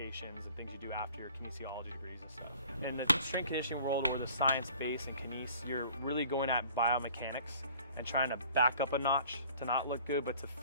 and things you do after your kinesiology degrees and stuff. In the strength and conditioning world, or the science base and kines, you're really going at biomechanics and trying to back up a notch to not look good, but to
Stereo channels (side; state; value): both; inverted; correlation -0.51